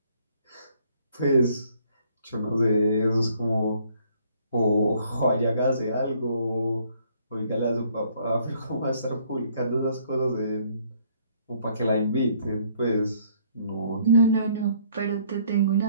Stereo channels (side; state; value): both; inverted; correlation -0.64